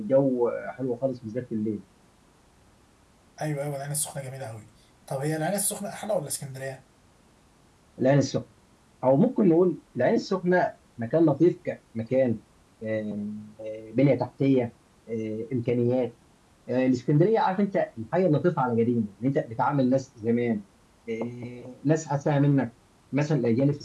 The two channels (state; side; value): identical; both; correlation 1.00